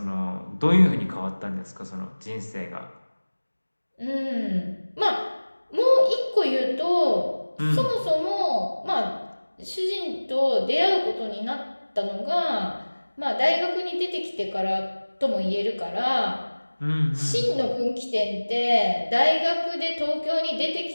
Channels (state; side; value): inverted; both; correlation -1.00